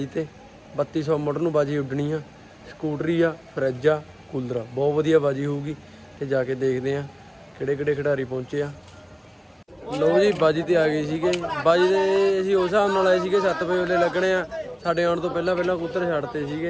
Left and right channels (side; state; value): both; identical; correlation 1.00